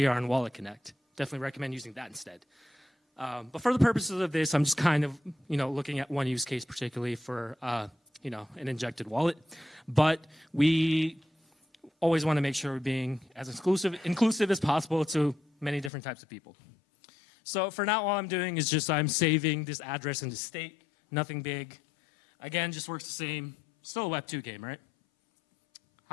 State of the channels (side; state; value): right; drops out; at 15.9 s